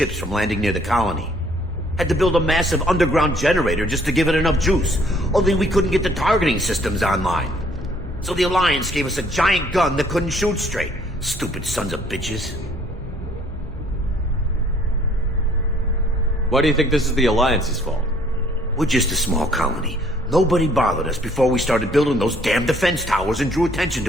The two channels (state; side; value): normal; both; correlation 0.61